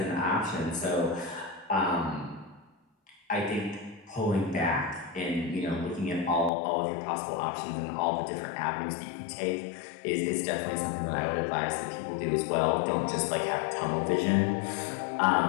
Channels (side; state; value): right; drops out; at 6.5 s